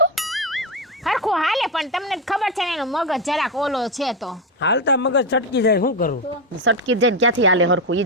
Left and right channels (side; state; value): both; normal; correlation 0.11